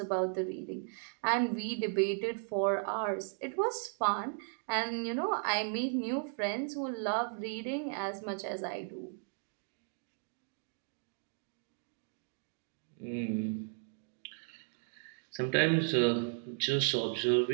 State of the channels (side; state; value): left; silent; 54 dB below the other